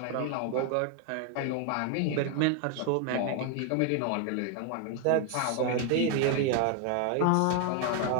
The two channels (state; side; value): different; both; correlation 0.01